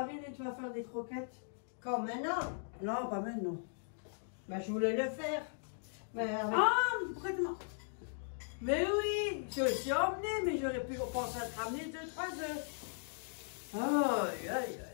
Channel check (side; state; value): right; silent; digital silence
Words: et tu vas faire des croquettes. Comme maintenant? Non, pas maintenant. Ben, je voulais le faire. Mais avec... Ah, prête-moi. Mais oui, je suis emmené, mais j'aurais pu penser à te ramener 2-3 œufs. Aïe, aïe, aïe,